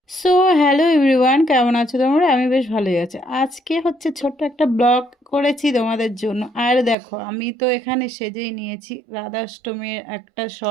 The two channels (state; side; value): drops out; left; at 7.0 s